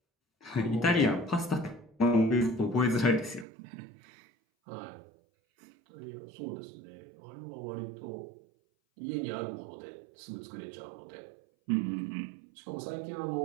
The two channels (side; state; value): left; drops out; at 3.5 s